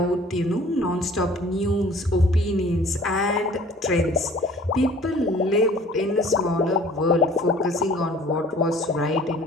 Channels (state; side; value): normal; both; correlation 0.50